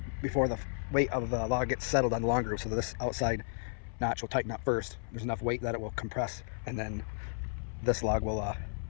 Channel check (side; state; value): right; silent; 56 dB below the other